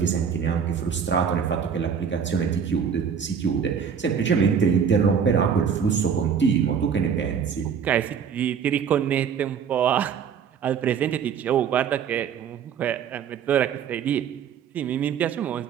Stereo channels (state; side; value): quieter; left; 7.3 dB